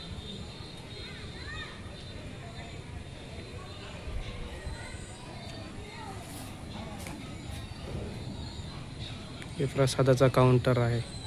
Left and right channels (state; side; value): identical; both; correlation 1.00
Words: हे प्रसादाचा काउंटर आहे,